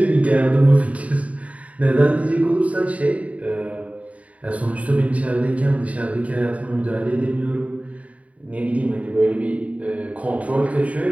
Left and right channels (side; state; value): left; late; 0.067 ms